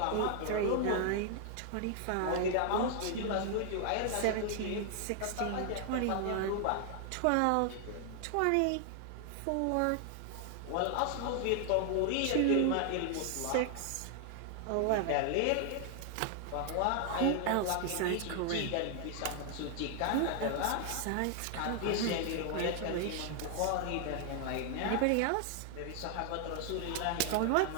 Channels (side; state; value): both; different; correlation 0.00